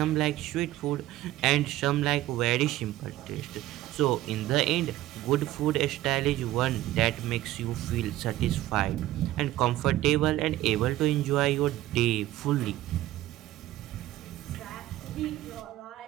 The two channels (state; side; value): quieter; left; 15.2 dB